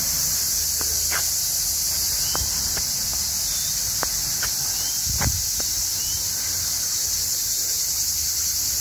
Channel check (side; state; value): both; identical; correlation 1.00